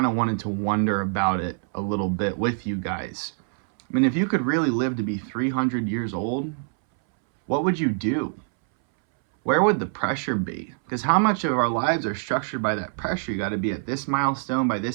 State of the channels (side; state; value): left; silent; 62 dB below the other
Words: of wanted to wonder about it a little bit with you guys. I mean, if you could really live to be 300 years old, what would you do? Where would the pressure be? Because how much of our lives are structured by that pressure? You got to be at this milestone by